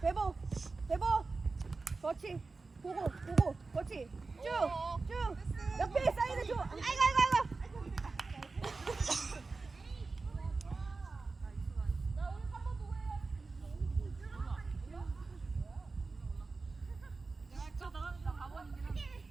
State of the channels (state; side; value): quieter; left; 3.9 dB